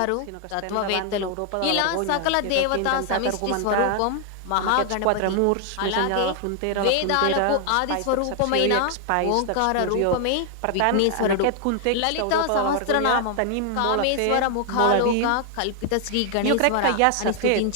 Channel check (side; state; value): both; different; correlation 0.00